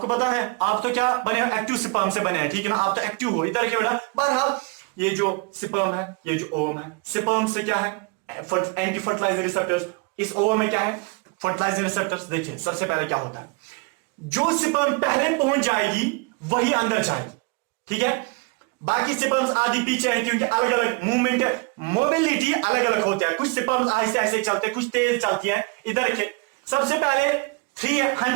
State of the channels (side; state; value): left; quieter; 27.4 dB